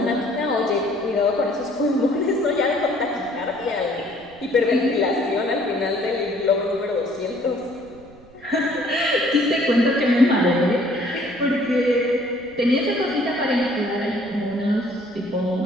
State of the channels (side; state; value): right; noise; rumble, 25 dB below the sound